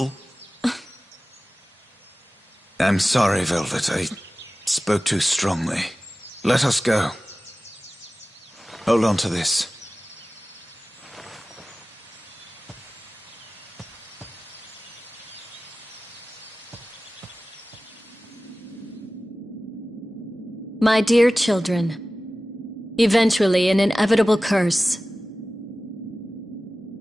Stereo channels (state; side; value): normal; both; correlation 0.97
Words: I'm sorry, Velvet. I spoke too strongly. Let us go. Hold on to this. My dear children, eventually an inevitable curse.